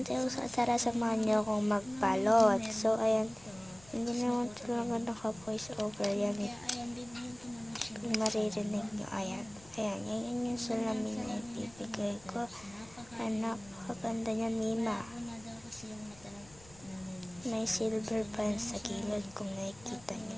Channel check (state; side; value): noise; left; rumble, 23 dB below the sound